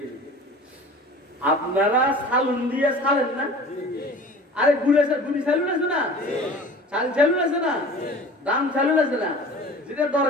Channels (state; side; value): normal; both; correlation 0.42